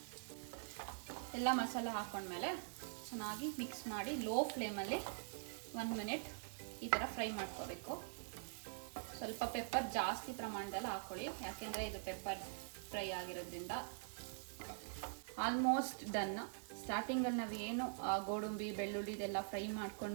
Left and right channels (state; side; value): silent; left; digital silence